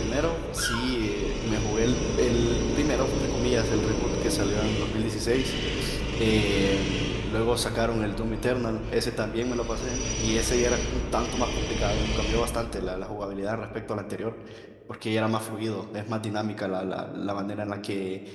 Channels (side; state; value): both; identical; correlation 1.00